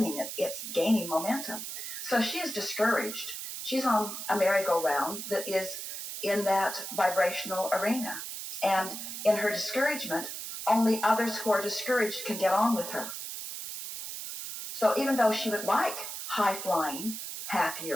it. It's gaining momentum. So she is discouraged. She's on a merry-go-round that is in that vibrational arena. And in her discouragement, only others who are discouraged can get on with her. So even though she would like high-flying,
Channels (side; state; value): right; noise; hiss, 7 dB below the sound